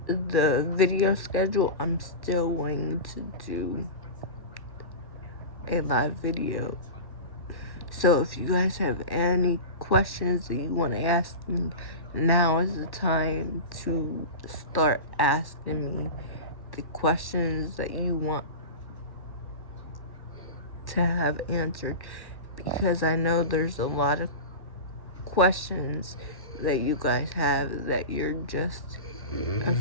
video schedule, I'm still going to do a live video. So if you guys have any questions that you want to ask me, now is the time to start asking me the questions that you want to have answered, because I know there's a lot of questions that you guys have that you're just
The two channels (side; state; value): right; late; 1.1 ms